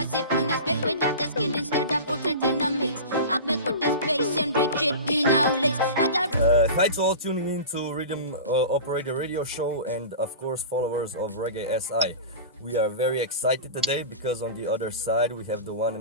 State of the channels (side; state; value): both; inverted; correlation -0.32